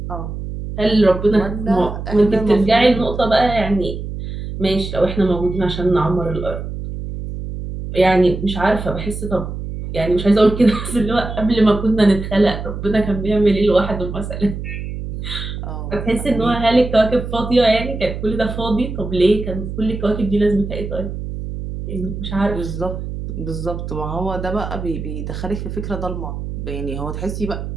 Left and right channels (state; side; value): noise; right; hum, 7 dB below the sound